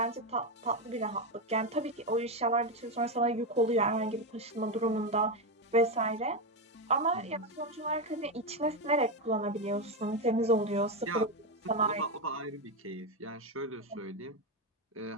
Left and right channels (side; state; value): both; normal; correlation 0.10